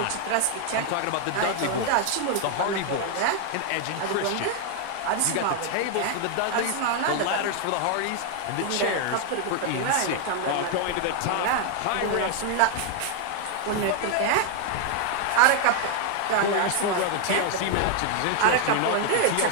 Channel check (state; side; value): different; both; correlation 0.00